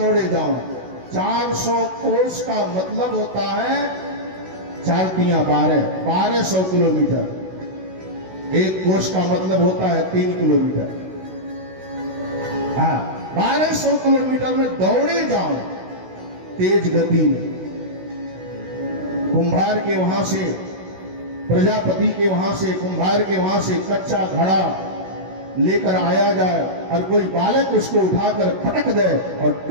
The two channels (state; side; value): late; left; 16 ms